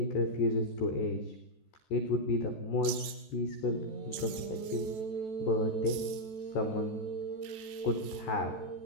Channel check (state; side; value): late; right; 14 ms